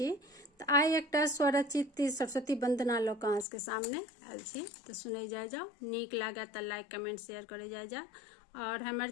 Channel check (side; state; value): right; drops out; at 3.5 s